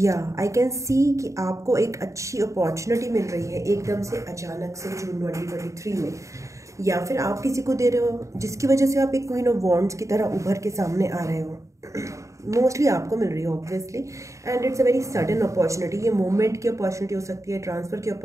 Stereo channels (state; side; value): late; left; 0.15 ms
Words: आई कैन सी कि आपको एक अच्छी अपॉर्चुनिटी मिल रही है एकदम से अचानक से जून 2023 में, या फिर आप किसी को दे रहे हो जिसकी वजह से आप एक क्वीन ऑफ वॉन्ड्स की तरह उभर के सामने आ रहे हो। मोस्टली आपको मिल रही है obviously, and it's a very sudden opportunity. ये मोमेंट की अपॉर्चुनिटी हो सकती है, ट्रांसफ़र की